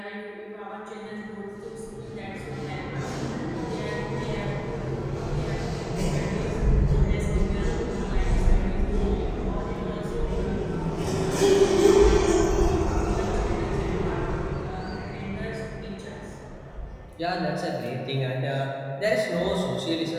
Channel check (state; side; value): identical; both; correlation 1.00